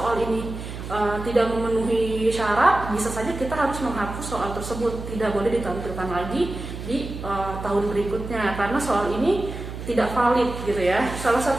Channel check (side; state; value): right; noise; hum, 9 dB below the sound